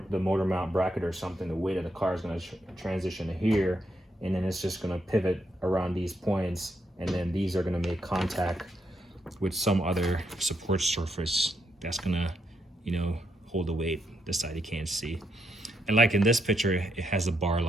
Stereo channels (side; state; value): both; normal; correlation 0.79